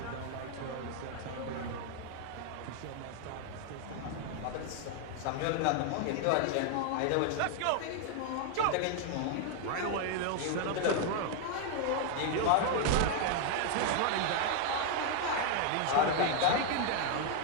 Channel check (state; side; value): different; both; correlation 0.00